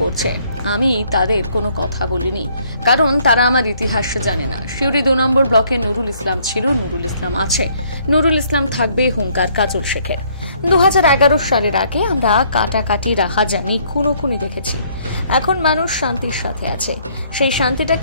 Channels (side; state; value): both; inverted; correlation -0.65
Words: করছে। আমি তাদের কোনো কথা বলিনি, কারণ তারা আমার ইতিহাস জানে না। শিউরি ২ নম্বর ব্লকে নুরুল ইসলাম ছিল, নুরুল ইসলাম আছে, নুরুল ইসলাম থাকবে, হুঙ্কার কাজল শেখের। 2011 সালের আগে আমরা কাটাকাটি, রাহাজানি, খুনোখুনি দেখেছি। এখন মানুষ শান্তির সাথে আছে। সেই